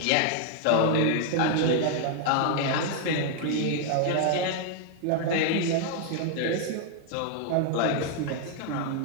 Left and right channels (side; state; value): both; different; correlation 0.00